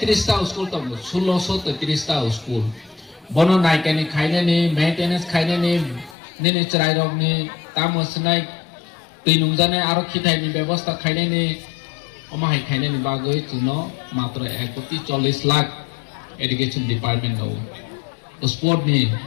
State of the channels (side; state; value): right; drops out; at 6.2 s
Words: টা school তো 1633 টা school বনো নাইকানি খাইনে নি maintenance খাইনে নি নিনি চরাই রগনি তামসনাই তৈনুমজানে আরো খিথাইনি ব্যবস্থা খাইনে নি অমাহাই খাইনে নি বাগৈ চুনো মাত্র 1.40 লাখ এডুকেশন ডিপার্টমেন্ট দাও স্পোর্ট নি